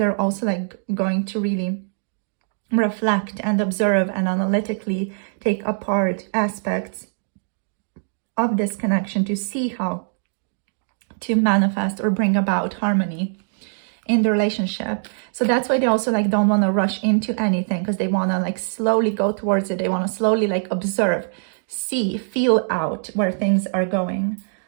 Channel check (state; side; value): silent; left; digital silence